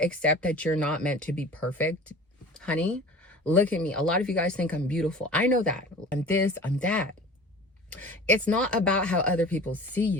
that you're not meant to be perfect, honey, look at me. A lot of you guys think I'm beautiful. I know that. I'm this, I'm that. It's not about how other people see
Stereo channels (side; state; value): both; normal; correlation 0.40